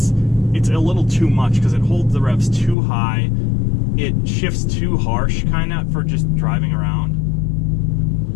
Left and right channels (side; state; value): right; drops out; at 2.8 s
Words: a little too much because it holds the revs too high. It shifts too harsh kind of for just driving around.